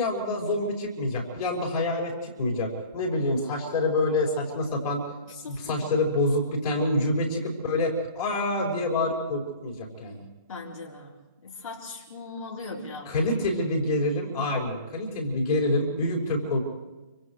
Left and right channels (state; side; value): inverted; both; correlation -0.43